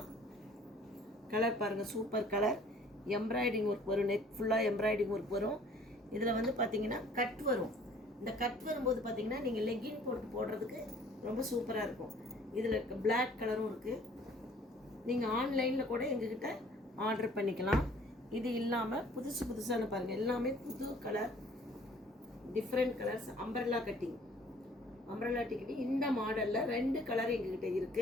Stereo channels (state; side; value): normal; both; correlation 0.55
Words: கலர் பாருங்கள், சூப்பர் கலர். எம்ப்ராய்டிங் ஒர்க் வரும், நெக் ஃபுல்லாக எம்ப்ராய்டிங் ஒர்க் வரும். இதில் வந்து பார்த்தீங்கன்னா கட் வரும். இந்த கட் வரும்போது பார்த்தீங்கன்னா நீங்கள் லெக்கின் போடுறதுக்கு ரொம்ப சூப்பராக இருக்கும். இதில் பிளாக் கலரும் இருக்குது. நீங்கள் ஆன்லைனில் கூட எங்ககிட்ட ஆர்டர் பண்ணிக்கலாம். இது இல்லாமல் புதுசான பாருங்கள், எல்லாமே புது colour, different colours. Umbrella cutting இந்த மாடலில் 2 கலர் எங்ககிட்ட